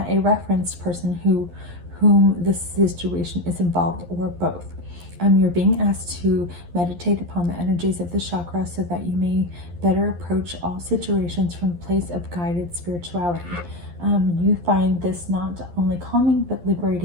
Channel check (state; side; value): late; left; 11 ms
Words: a referenced person whom this situation is involved, or both. You're being asked to meditate upon the energies of the chakra so that you may better approach all situations from a place of guided spirituality. You find this not only calming but